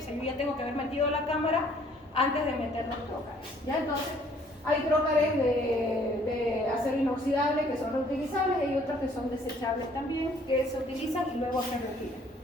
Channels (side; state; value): both; normal; correlation 0.60